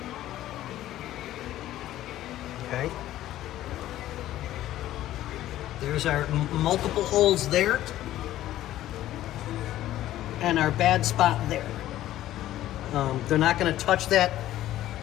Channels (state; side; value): quieter; right; 13.8 dB